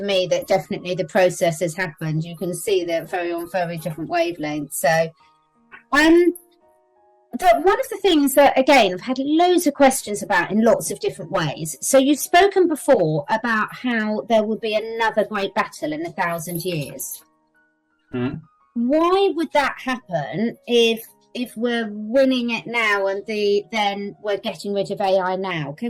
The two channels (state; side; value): identical; both; correlation 1.00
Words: me that definitely the process has happened. You can see they're on very different wavelengths. So, one of the things that, again, I've had loads of questions about in lots of different ways. So you've spoken before about how there will be another great battle in 1,000 years. Why would that happen if we're winning it now and then we're getting rid of AI now?